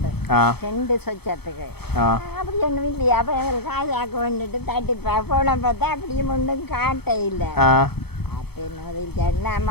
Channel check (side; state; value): right; late; 0.97 ms